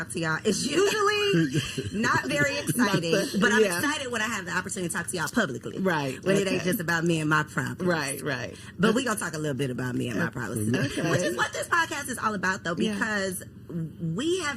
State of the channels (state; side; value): identical; both; correlation 1.00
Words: to y'all. It's usually not very exciting, but I'm excited when I have the opportunity to talk to y'all publicly. Right. When it ain't just about me and my problems. Right. But we're going to talk a little bit about me and my problems today. Which is what this podcast is all about, though, because we